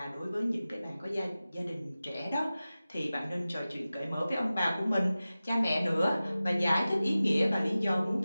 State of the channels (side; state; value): both; inverted; correlation -0.96